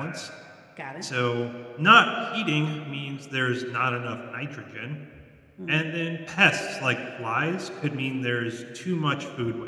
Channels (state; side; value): identical; both; correlation 1.00